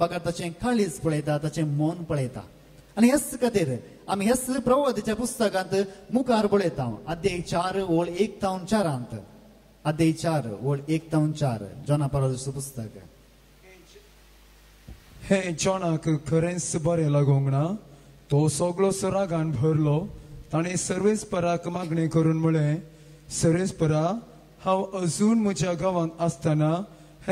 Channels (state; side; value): identical; both; correlation 1.00